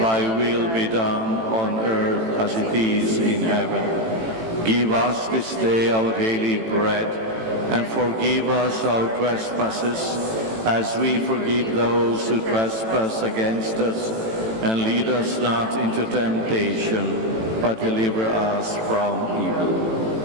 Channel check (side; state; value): left; late; 18 ms